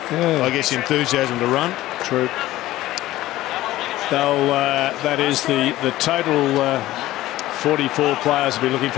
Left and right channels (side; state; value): right; quieter; 15.9 dB